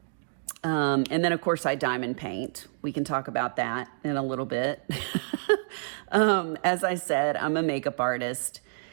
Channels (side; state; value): left; silent; digital silence